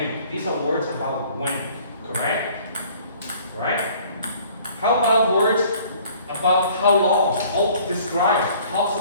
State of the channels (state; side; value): inverted; both; correlation -0.54